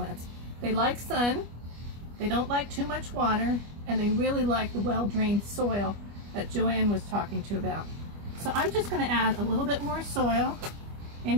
They like sun, they don't like too much water, and they really like the well-drained soil that Joanne was talking to about. So I'm just going to add a little bit more soil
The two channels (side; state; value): left; late; 25 ms